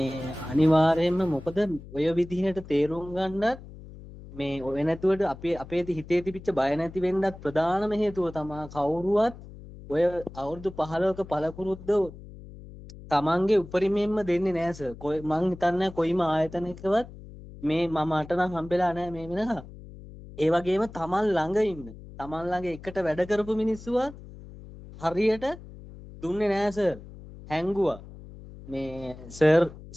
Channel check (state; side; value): noise; left; hum, 16 dB below the sound